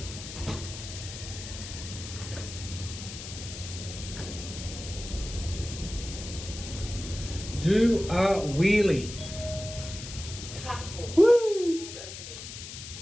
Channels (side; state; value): left; noise; hiss, 10 dB below the sound